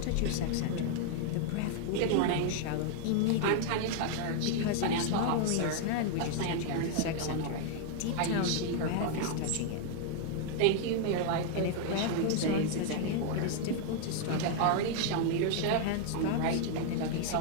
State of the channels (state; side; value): different; both; correlation 0.00